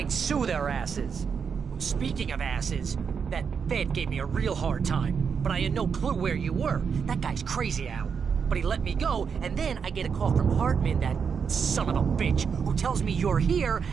sue their asses. Speaking of asses, that Fed gave me a real hard time, but I had no clue where you were. That guy's crazy, Al. But he let me go, and then I get a call from Hartman, that son of a bitch, who tells me you're here,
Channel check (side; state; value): left; quieter; 6.4 dB